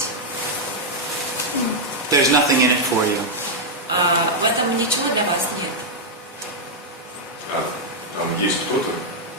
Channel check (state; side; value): normal; both; correlation -0.04